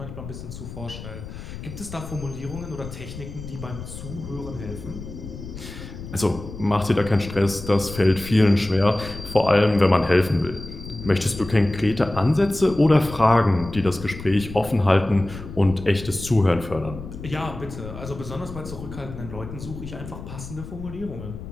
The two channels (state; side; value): noise; left; rumble, 11 dB below the sound